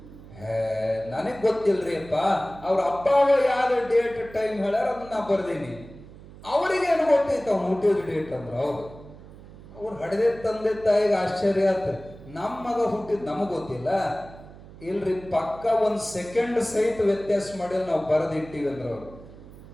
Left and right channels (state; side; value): noise; right; hum, 18 dB below the sound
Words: ನನಗ್ ಗೊತ್ತಿಲ್ರಿ ಅಪ್ಪ, ಅವ್ರ ಅಪ್ಪ ಯಾವ ಡೇಟ್ ಟೈಮ್ ಹೇಳ್ಯಾರ ಅದನ್ನ ನಾ ಬರ್ದೀನಿ, ಅವ್ರಿಗೇನು ಗೊತ್ತೈತ ಅವ್ನು ಹುಟ್ಟಿದ ಡೇಟ್ ಅಂದ್ರು. ಅವ್ರು ಹಡೆದೇ ತಂದೆ ತಾಯಿಗೆ ಆಶ್ಚರ್ಯ ಆತ, ನಮ್ಮ ಮಗ ಹುಟ್ಟಿದ್ ನಮಗ್ ಗೊತ್ತಿಲ್ಲ. ಇಲ್ರಿ, ಪಕ್ಕ ಒಂದ್ ಸೆಕೆಂಡ್ ಸಹಿತ ವ್ಯತ್ಯಾಸ ಮಾಡಿ ನಾವು ಬರೆದಿಟ್ಟಿವಿ ಅಂದ್ರ ಅವ್ರು.